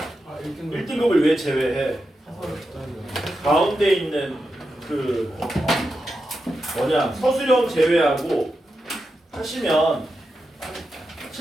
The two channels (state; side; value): normal; both; correlation 0.88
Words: 1등급. 1등급을 왜 제외해? 가운데 있는 그 서술형 제외하고 하시면